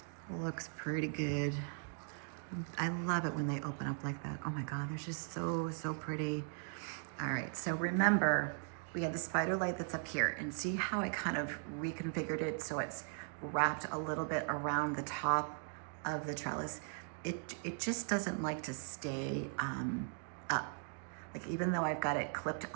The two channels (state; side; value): silent; left; 52 dB below the other